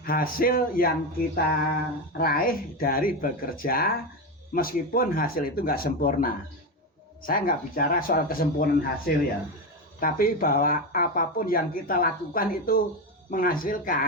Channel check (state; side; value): normal; both; correlation 0.15